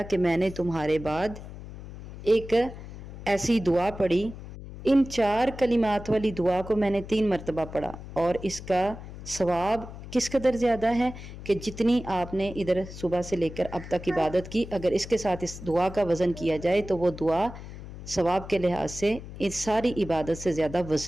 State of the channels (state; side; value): noise; left; hum, 13 dB below the sound